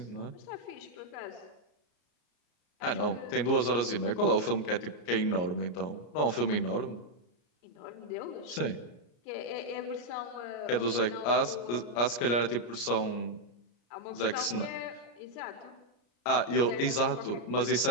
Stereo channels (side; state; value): right; late; 33 ms